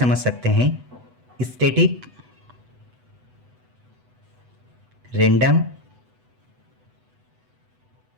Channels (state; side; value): late; left; 8.0 ms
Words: सकते हैं, स्टैटिक रैंडम